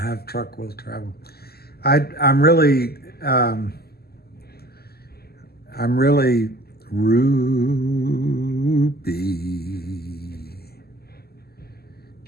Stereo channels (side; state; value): right; late; 0.46 ms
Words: truck will travel. I'm really Ruby.